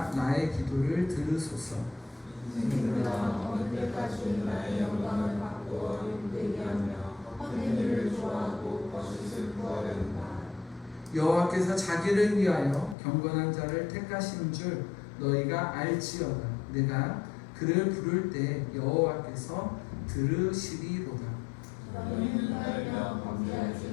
나의 기도를 들으소서. 언제까지 나의 영광을 받고 힘들게 하며 헛되기를 좋아하고 거짓을 구하려는가. 여호와께서 자기를 위하여 경건한 자를 택하신 줄 너희가 알지어다. 내가 그를 부를 때 여호와께서 들으시리로다. 너희는 나에게 범죄하지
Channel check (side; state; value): right; drops out; at 13.0 s